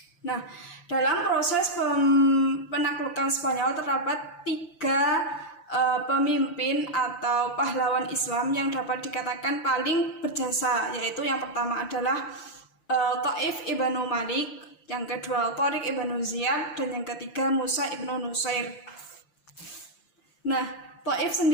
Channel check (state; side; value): late; right; 5.8 ms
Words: Nah, dalam proses penaklukan Spanyol terdapat tiga pemimpin atau pahlawan Islam yang dapat dikatakan paling berjasa, yaitu yang pertama adalah Taif ibnu Malik, yang kedua Tariq ibnu Ziyad, dan yang ketiga Musa ibnu Nusair. Nah, Taif